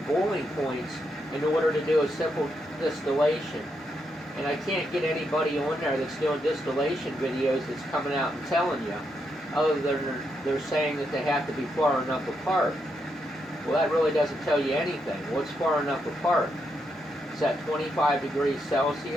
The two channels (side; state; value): both; normal; correlation 0.81